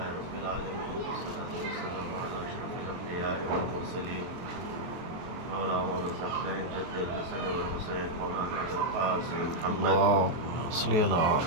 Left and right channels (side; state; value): left; late; 23 ms